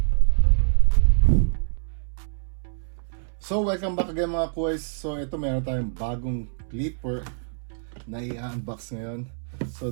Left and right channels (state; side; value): silent; left; 61 dB below the other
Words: So welcome back again mga kuys. So ito meron tayong bagong clipper na i-unbox ngayon. So